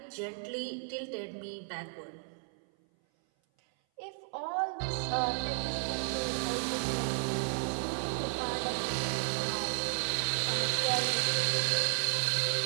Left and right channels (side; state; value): left; silent; 56 dB below the other